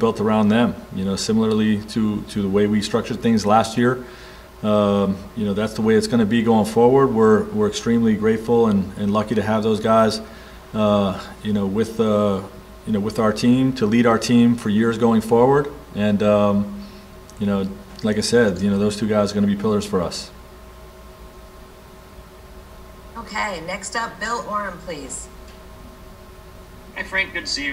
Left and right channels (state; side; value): identical; both; correlation 1.00